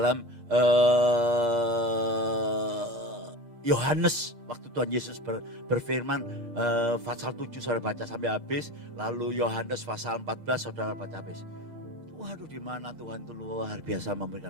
Yohanes waktu Tuhan Yesus berfirman pasal 7 saudara baca sampai habis, lalu Yohanes pasal 14 saudara baca habis. Waduh, di mana Tuhan itu luar biasa memberikan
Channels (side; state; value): left; late; 8.5 ms